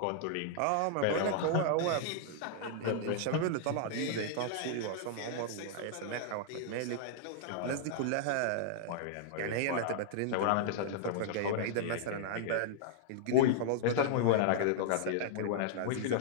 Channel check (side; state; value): both; different; correlation -0.01